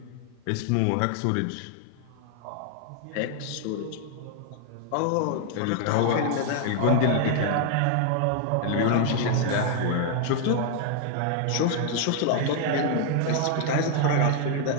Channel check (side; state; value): both; different; correlation 0.00